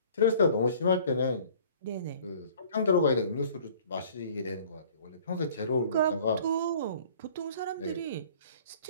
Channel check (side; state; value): both; inverted; correlation -0.51